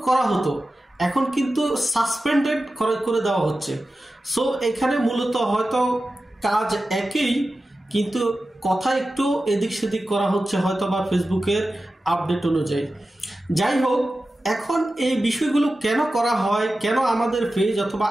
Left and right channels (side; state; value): both; normal; correlation 0.94